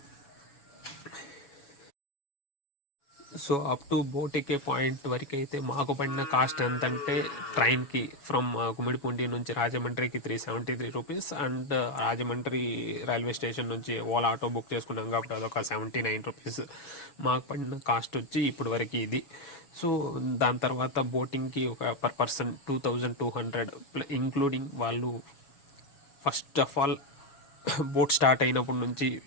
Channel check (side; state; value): right; late; 7.1 ms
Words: so up to boat ఎక్కే పాయింట్ వరకు అయితే మాకు పడిన కాస్ట్ ఎంతంటే, ట్రైన్కి ఫ్రమ్ గుమ్మిడిపూండి నుంచి రాజమండ్రికి 373 rupees, and Rajahmundry railway station నుంచి ఓలా ఆటో బుక్ చేసుకున్నాం కాబట్టి అదొక 79 రూపీస్. మాకు పడిన కాస్ట్ వచ్చి ఇప్పుడు వరకు ఇది. సో దాని తర్వాత బోటింగ్కి ఒక పర్ పర్సన్ 2200, ఇంక్లూడింగ్ వాళ్ళు first of all boat start అయినప్పటి నుంచి